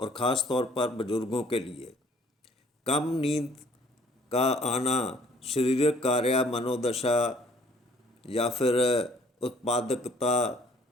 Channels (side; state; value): both; normal; correlation 0.58